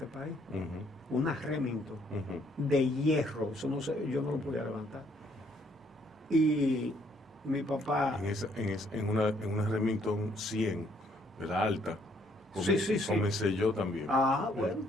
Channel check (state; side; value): normal; both; correlation 0.67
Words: país, Ujú. una Remington Ujú. de hierro, eso no sé, yo no lo podía levantar. Y mi papá, En una Remington 100, de la alta. Sí, sí. Comencé yo también. bueno,